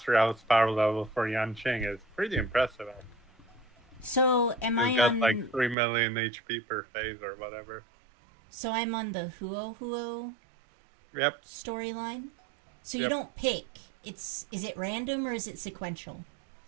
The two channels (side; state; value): left; drops out; at 5.8 s